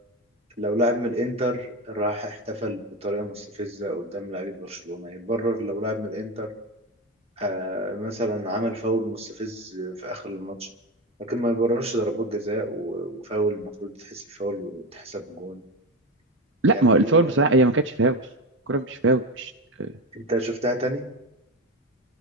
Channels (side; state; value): both; normal; correlation 0.19